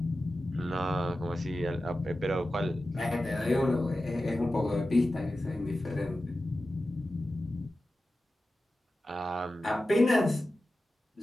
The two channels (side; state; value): both; normal; correlation 0.93